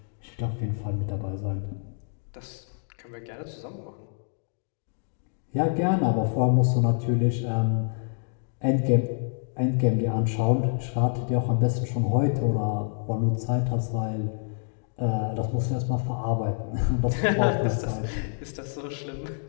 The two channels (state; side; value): silent; right; digital silence